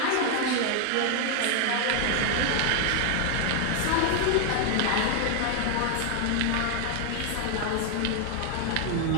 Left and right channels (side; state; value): both; different; correlation 0.00